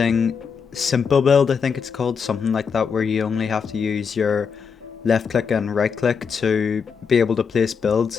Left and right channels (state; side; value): quieter; right; 6.2 dB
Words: simple build, I think it's called, something like that, where you only have to use your left click and right click to be able to place builds